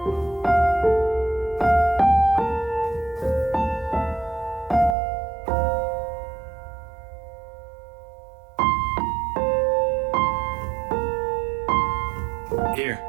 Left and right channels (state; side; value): drops out; left; at 5.0 s